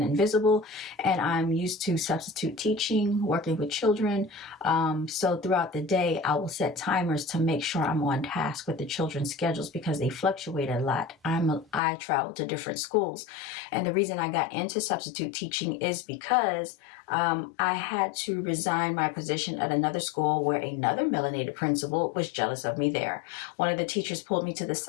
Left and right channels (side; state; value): right; drops out; at 11.8 s